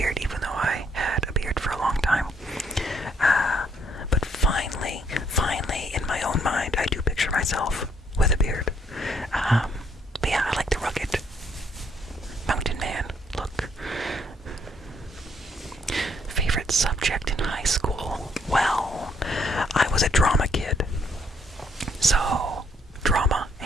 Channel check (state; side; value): normal; both; correlation 0.69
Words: even though I had a beard for a long time. But finally, in my own mind, I do picture myself with a beard. But yeah, I like the rugged mountain man.